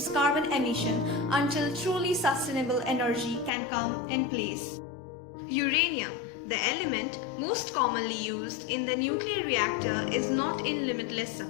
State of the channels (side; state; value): right; drops out; at 3.5 s